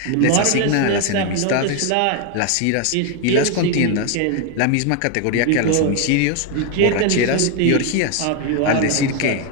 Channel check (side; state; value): both; different; correlation 0.01